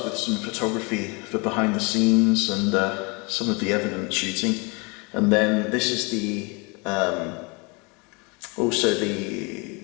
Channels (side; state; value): right; quieter; 29.9 dB